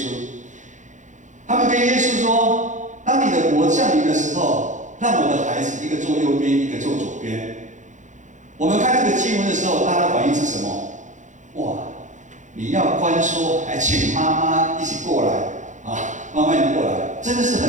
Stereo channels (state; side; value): late; left; 0.36 ms